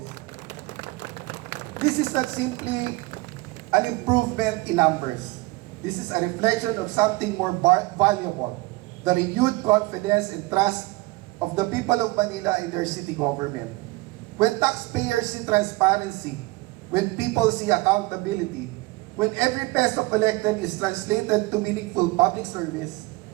This is not simply an improvement in numbers. This is a reflection of something more valuable, the renewed confidence and trust of the people of Manila in their city government. When taxpayers see transparency, when people see accountability, when every peso collected is translated to meaningful public service,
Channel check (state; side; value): quieter; left; 22.5 dB